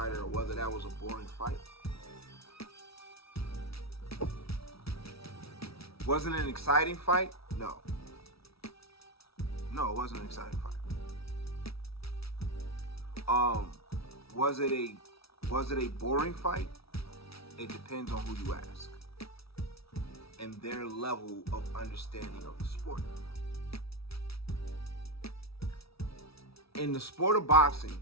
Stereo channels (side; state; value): right; late; 0.76 ms